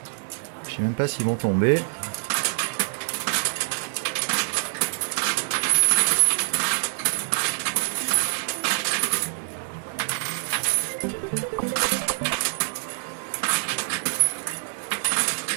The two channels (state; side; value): silent; left; 60 dB below the other